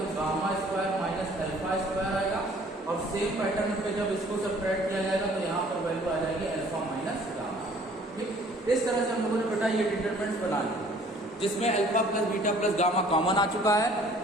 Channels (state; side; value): normal; both; correlation 0.55